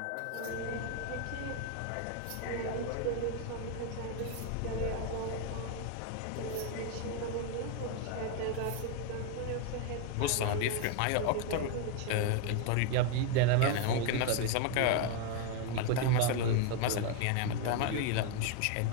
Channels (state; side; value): different; both; correlation 0.01